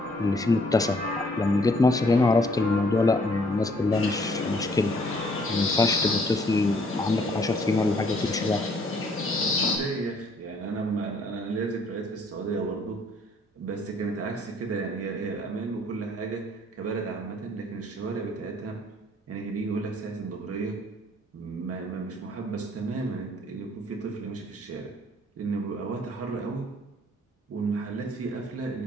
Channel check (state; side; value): normal; both; correlation 0.62